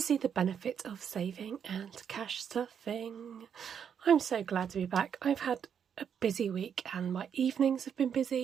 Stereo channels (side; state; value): left; quieter; 7.9 dB